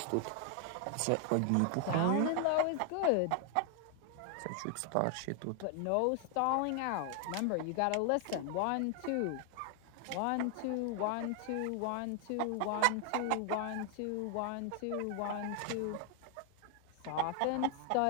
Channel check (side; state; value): both; different; correlation 0.00